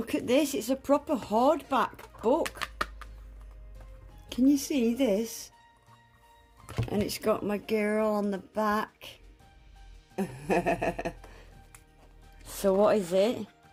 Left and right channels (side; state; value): both; identical; correlation 1.00